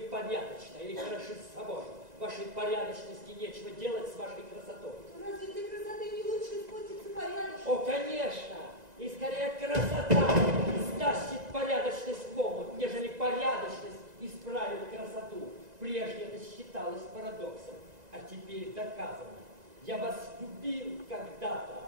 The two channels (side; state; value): left; late; 1.9 ms